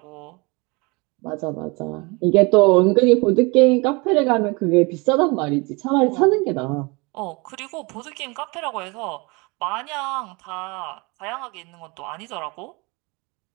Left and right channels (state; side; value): quieter; left; 27.6 dB